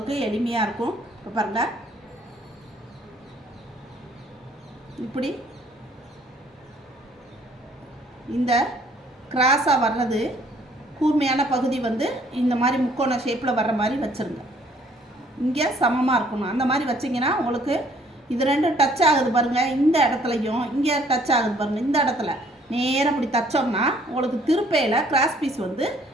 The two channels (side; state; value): both; normal; correlation 0.61